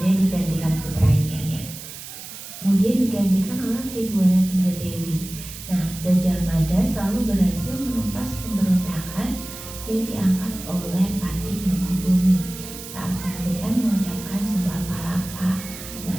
digantikan putranya ya. Kemudian digantikan oleh Tribhuwana Tunggadewi. Nah, Gajah Mada selalu berhasil menumpas pemberontakan diangkat oleh Pati Mangkubumi saat pemilikan mengucapkan Sumpah Palapa. Nah,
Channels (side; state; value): right; noise; hiss, 12 dB below the sound